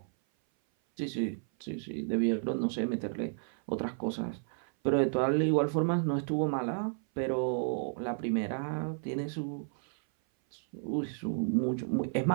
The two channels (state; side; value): silent; left; 56 dB below the other